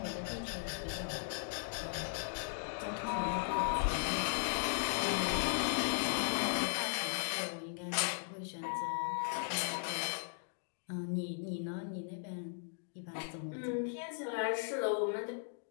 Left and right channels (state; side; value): silent; right; digital silence